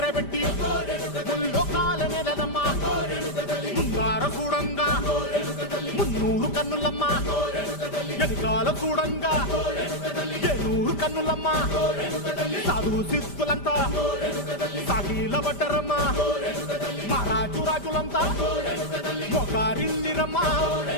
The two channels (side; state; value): right; late; 5.1 ms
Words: పెట్టి ముల్లోకాల నెలనమ్మా ముందార చూడంగా మున్నూరు కన్నులమ్మా వెనకాల చూడంగా ఏనూరు కన్నులమ్మా సాధువు సిద్ధులంతా సాగిల బట్టరమ్మా మహారాజు రాజులంతా మొగారిల్లిరమ్మా